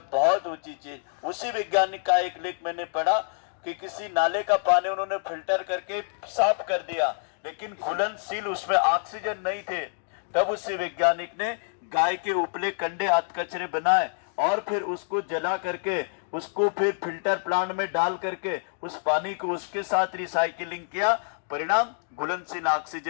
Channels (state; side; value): silent; right; digital silence